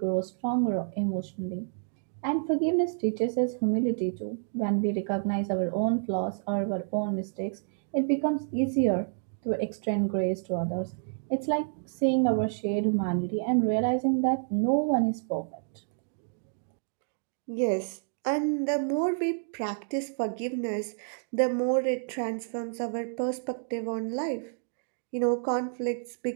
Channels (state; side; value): silent; left; digital silence